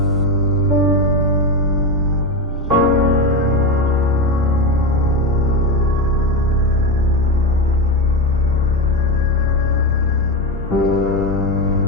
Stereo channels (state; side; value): normal; both; correlation 0.16